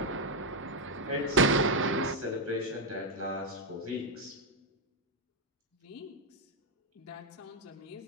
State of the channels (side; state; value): both; normal; correlation 0.02